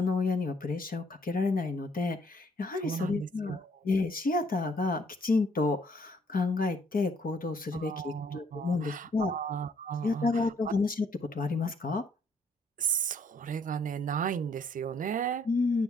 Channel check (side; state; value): both; normal; correlation 0.65